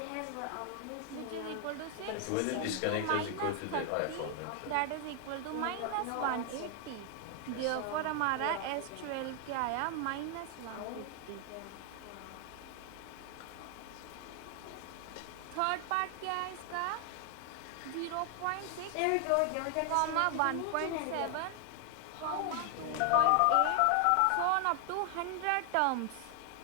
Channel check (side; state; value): both; different; correlation 0.00